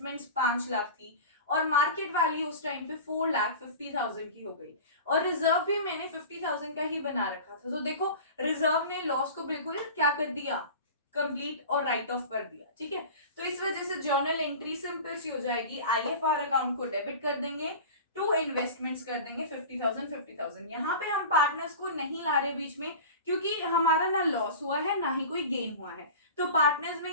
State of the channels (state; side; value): inverted; both; correlation -0.34